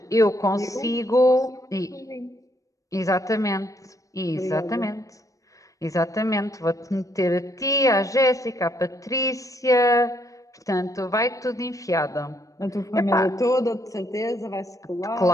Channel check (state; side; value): late; right; 0.16 ms